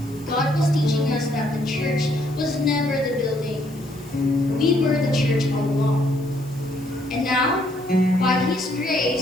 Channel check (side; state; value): left; noise; hiss, 25 dB below the sound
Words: God was teaching us that the church was never the building. We were the church all along. And now, by His